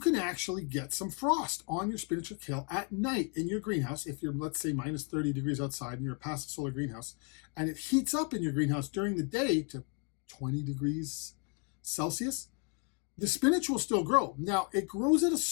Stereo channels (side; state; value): right; quieter; 35.1 dB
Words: actually get some frost on your spinach or kale at night in your greenhouse if you're, let's say, minus 30 degrees outside and you're a passive solar greenhouse, and it heats up in your greenhouse during the day to 20 degrees Celsius. The spinach will still grow. Now, it grows at a